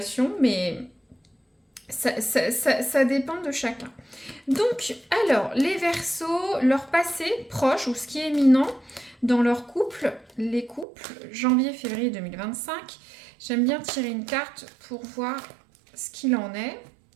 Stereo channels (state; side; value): drops out; left; at 10.9 s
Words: mais ça dépend de chacun. Donc, alors, les Verseaux, leur passé proche ou ce qui est éminent dans leur couple, les couples, janvier-février 2025. J'aime bien tirer une carte pour voir ce qu'il en est.